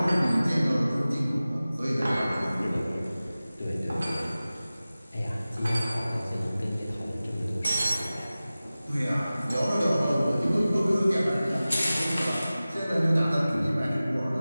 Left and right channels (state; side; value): inverted; both; correlation -0.97